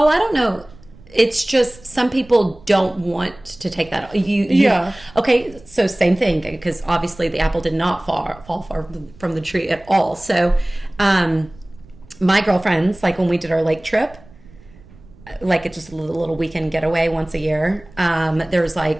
I don't know. It's just some people don't want to take that. Okay, so same thing because obviously the apple did not fall far from the tree at all. So, my girlfriends, like when we did our lake trip, like it's just a little weekend getaway once a year. There was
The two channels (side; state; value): right; noise; rumble, 24 dB below the sound